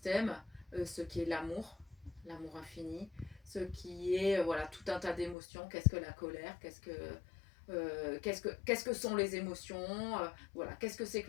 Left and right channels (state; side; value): drops out; right; at 5.4 s